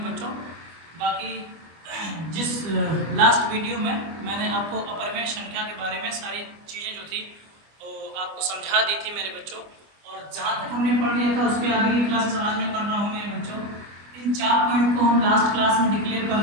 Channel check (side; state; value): left; late; 25 ms